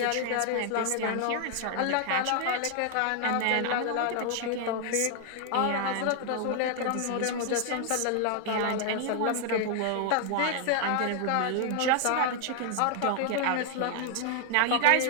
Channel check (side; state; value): both; different; correlation 0.00